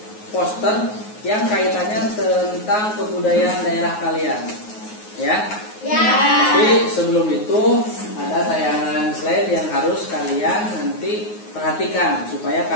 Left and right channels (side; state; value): right; late; 9.5 ms